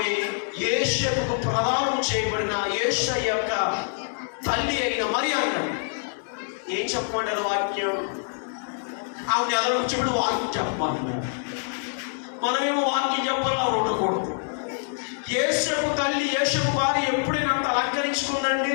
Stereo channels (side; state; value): right; silent; digital silence